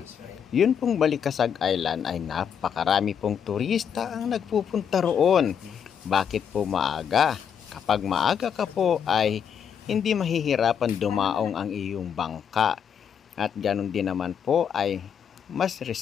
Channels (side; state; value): right; quieter; 7.8 dB